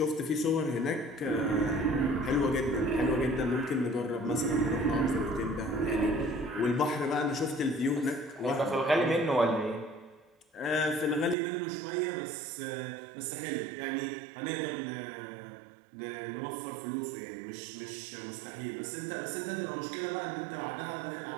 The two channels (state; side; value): drops out; left; at 11.4 s